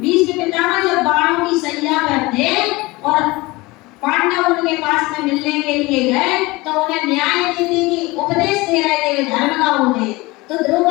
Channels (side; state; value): right; quieter; 22.1 dB